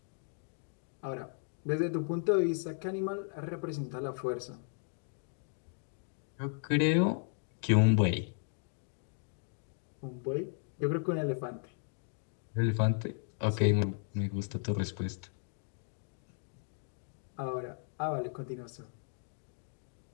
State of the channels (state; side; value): silent; right; 54 dB below the other